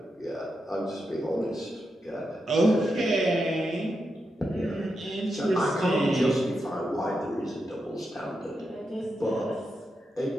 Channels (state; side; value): normal; both; correlation 0.86